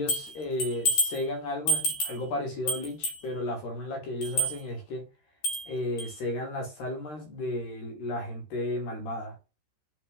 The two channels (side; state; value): right; late; 13 ms